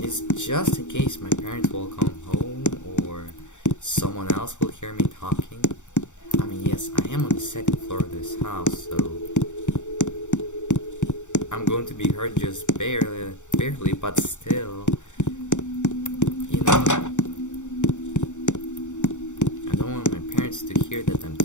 is just in case my parents will come home or someone else will hear me talking. I mean, yes, I am on the second floor of this house, so I'm going to be heard just barely, but still, you know, I don't want my parents to hear that I'm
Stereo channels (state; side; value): late; right; 0.85 ms